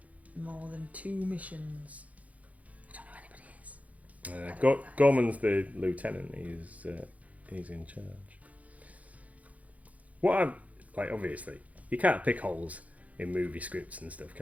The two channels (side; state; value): left; late; 0.070 ms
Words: more than 2 missions. I don't know who anybody is. Gorman's the lieutenant. He's in charge. What I'm like, obviously, you can't pick holes in movie scripts and stuff,